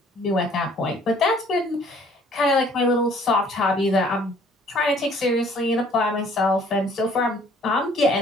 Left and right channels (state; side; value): normal; both; correlation 0.57